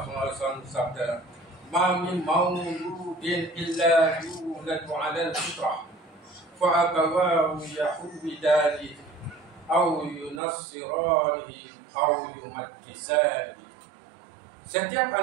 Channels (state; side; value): drops out; left; at 10.4 s